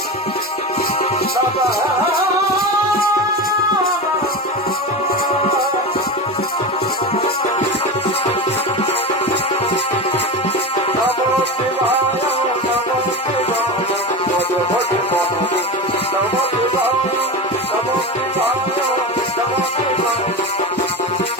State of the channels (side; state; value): both; normal; correlation 0.24